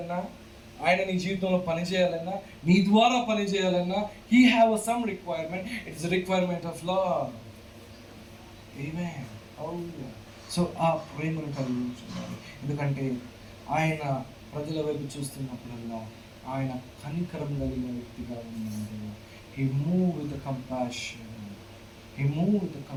ఆయన నీ జీవితంలో పని చేయాలన్నా, నీ ద్వారా పని చేయాలన్నా, He have some requirement. It's a requirement of love. Amen. Hallelujah. So ఆ ప్రేమను కలిగి ఉంటున్నాడు. ఎందుకంటే ఆయన ప్రజల వైపు చూస్తున్నప్పుడల్లా ఆయన కనికరం కలిగిన వ్యక్తిగా ఉన్నాడు. He moved with the compassion. He moved with the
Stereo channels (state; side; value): identical; both; correlation 1.00